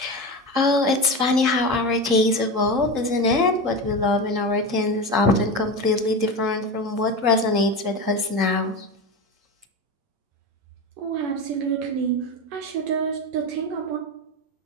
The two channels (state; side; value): late; left; 8.7 ms